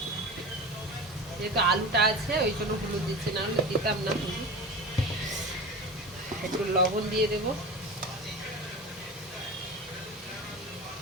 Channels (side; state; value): both; normal; correlation 0.30